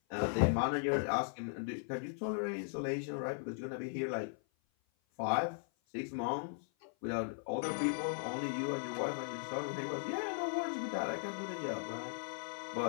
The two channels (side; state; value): right; silent; 52 dB below the other